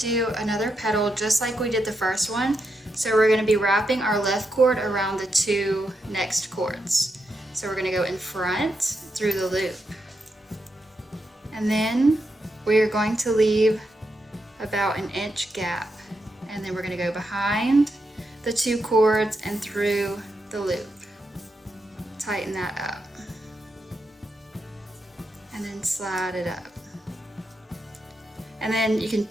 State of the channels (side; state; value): both; normal; correlation 0.84